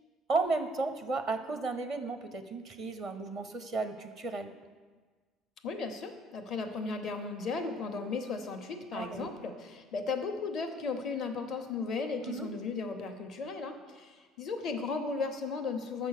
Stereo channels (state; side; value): normal; both; correlation 0.57